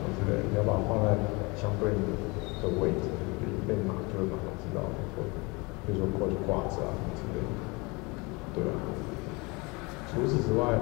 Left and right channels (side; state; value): right; quieter; 26.9 dB